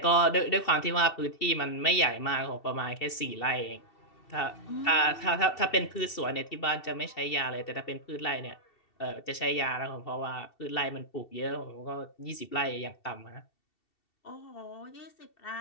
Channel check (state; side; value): late; right; 2.7 ms